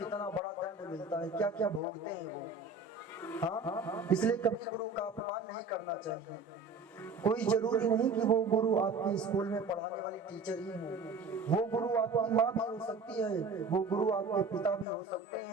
बड़ा दंड मिलता है, क्या क्या भोगते हैं वो। हाँ, इसलिए कभी गुरु का अपमान नहीं करना चाहिए। कोई जरूरी नहीं कि वो गुरु आपके स्कूल में पढ़ाने वाली टीचर ही हो, वो गुरु आपकी माँ भी हो सकती है, वो गुरु आपके पिता भी हो सकते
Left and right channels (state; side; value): quieter; left; 3.9 dB